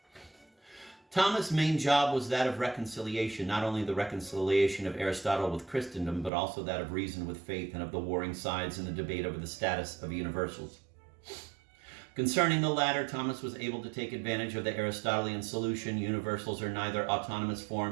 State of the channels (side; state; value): left; drops out; at 6.3 s